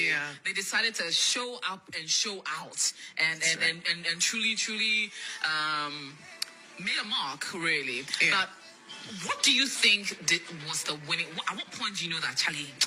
yeah. they decided to show up and show out, and truly made a mark, really. Yeah. But what do you think was the winning? At what point do you know that, Charlie,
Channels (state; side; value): identical; both; correlation 1.00